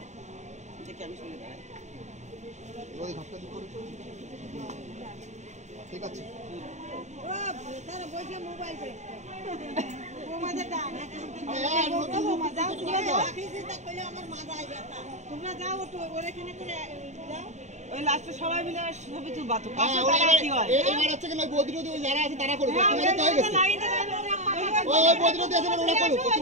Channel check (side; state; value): left; late; 0.34 ms